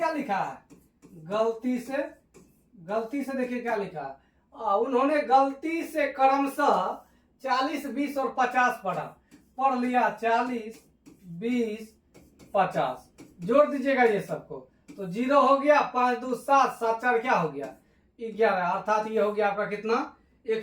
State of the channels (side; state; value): both; identical; correlation 1.00